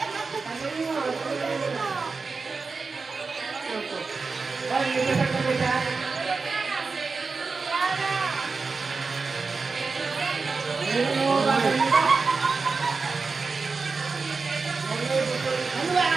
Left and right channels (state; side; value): quieter; left; 4.4 dB